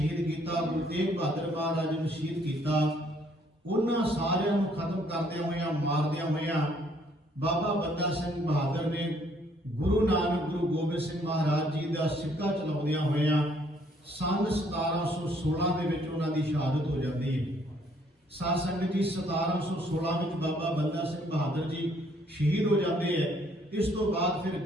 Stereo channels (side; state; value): both; normal; correlation 0.65